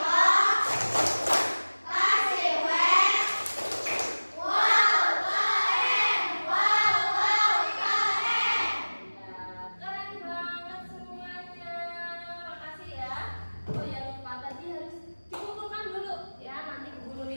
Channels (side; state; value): both; inverted; correlation -1.00